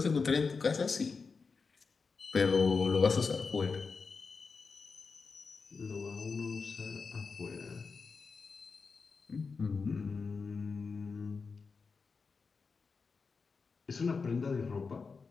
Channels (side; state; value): right; quieter; 4.8 dB